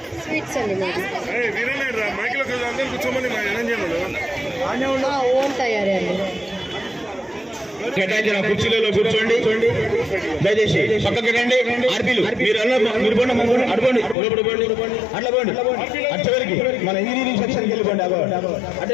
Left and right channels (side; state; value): right; drops out; at 14.2 s